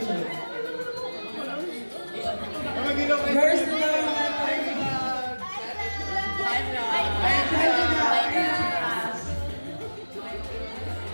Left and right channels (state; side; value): inverted; both; correlation -1.00